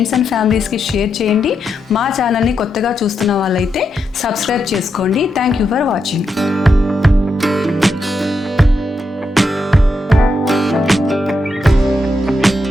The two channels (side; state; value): both; normal; correlation 0.83